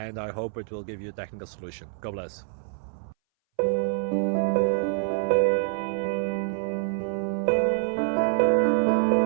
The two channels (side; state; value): left; silent; 60 dB below the other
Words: I hope it will give you a technical solution. God bless.